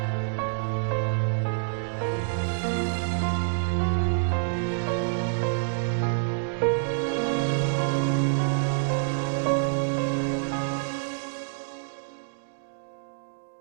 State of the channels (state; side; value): silent; left; digital silence